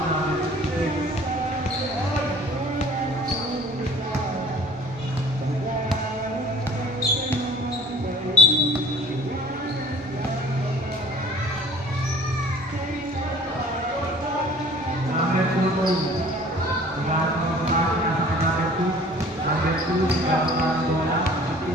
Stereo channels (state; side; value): normal; both; correlation 0.49